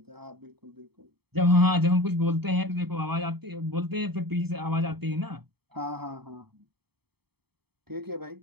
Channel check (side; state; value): left; late; 0.97 ms